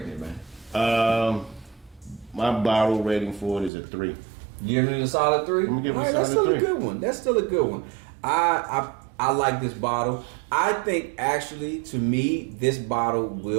it, man? My bottle rating for it is a 3. Giving it a solid 3. I'm giving it a that's solid still 3. a good one. That's still a good one. I like this bottle. I think actually, to me, this bottle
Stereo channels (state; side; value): drops out; left; at 3.7 s